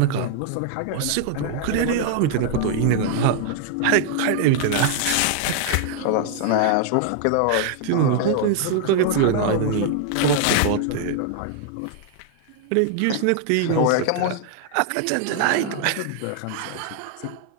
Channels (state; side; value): different; both; correlation 0.00